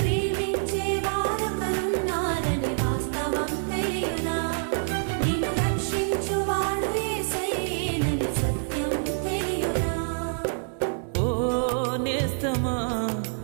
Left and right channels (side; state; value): left; silent; 61 dB below the other